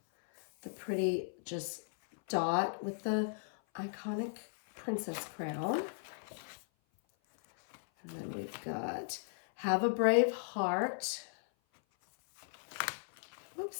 The pretty just dot with the iconic princess crown. And then we've got Have a Brave Heart.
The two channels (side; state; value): right; silent; 53 dB below the other